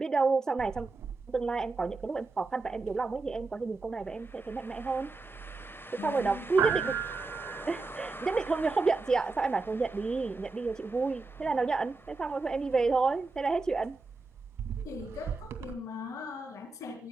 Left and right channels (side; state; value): left; quieter; 3.7 dB